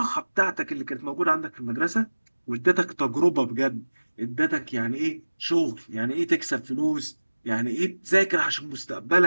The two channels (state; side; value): inverted; both; correlation -1.00